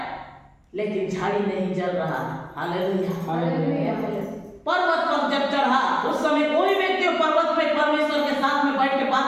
लेकिन झाड़ी नहीं जल रहा, हालेलुया। पर्वत पर जब चढ़ा उस समय कोई व्यक्ति पर्वत पे परमेश्वर के साथ में बैठ के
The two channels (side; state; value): both; identical; correlation 1.00